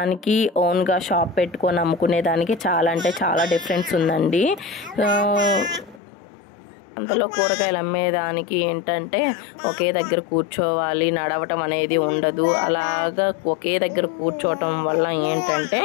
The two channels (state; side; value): drops out; right; at 6.0 s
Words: ఓన్గా షాప్ పెట్టుకొని అమ్ముకునేదానికి చాలా అంటే చాలా డిఫరెన్స్ ఉందండి. అంతలో కూరగాయలు అమ్మేదానికి ఏంటంటే ఒకే దగ్గర కూర్చోవాలి, నడవటం అనేది ఉండదు. అలాగా ఒకే దగ్గర కూర్చోవటం వల్ల ఏంటంటే